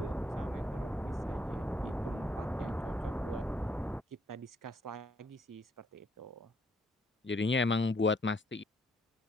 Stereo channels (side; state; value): both; normal; correlation 0.70